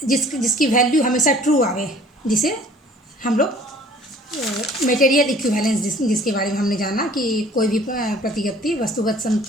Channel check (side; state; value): both; normal; correlation 0.52